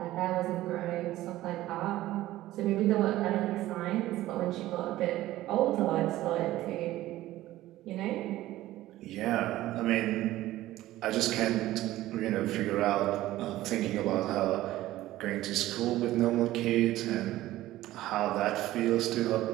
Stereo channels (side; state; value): left; quieter; 15.6 dB